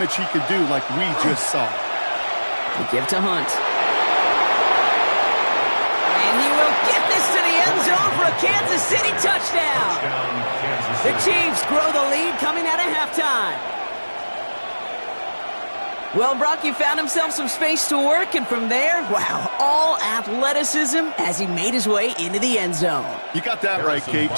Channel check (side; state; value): both; inverted; correlation -1.00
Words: he could do like we just saw. They give to Hunt. And he will get this to the end zone for a Kansas City touchdown. The Chiefs grow the lead coming out of halftime. Well, Brock, he found himself some space to work, and from there, wow, all athleticism as he made his way into the end zone. You got that right, Kate.